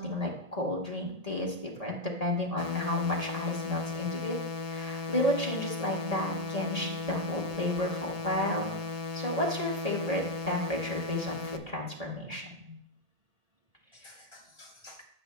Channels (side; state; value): left; late; 1.8 ms